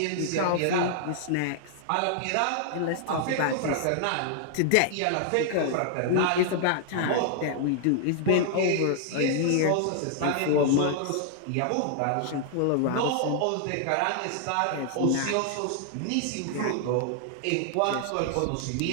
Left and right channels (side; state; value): both; different; correlation -0.01